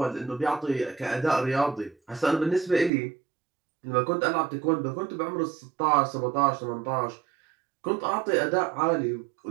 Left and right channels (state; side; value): drops out; left; at 2.9 s